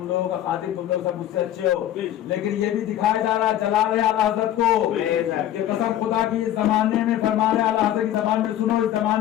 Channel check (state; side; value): quieter; right; 12.1 dB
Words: لوگوں کا خادم, تم لوگ سب مجھ سے اچھے ہو, لیکن یہ بھی دکھایا جا رہا ہے, جلا رہے اعلیٰ حضرت کو. یہ قسم خدا کی اس زمانے میں فرما رہے اعلیٰ حضرت کی زبان میں سنو, اس